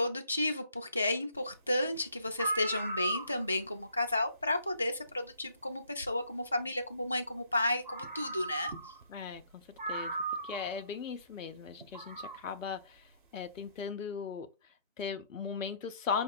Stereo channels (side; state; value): both; inverted; correlation -0.69